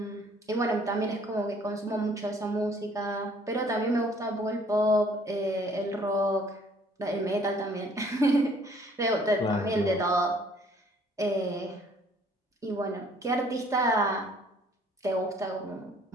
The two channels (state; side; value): normal; both; correlation 0.59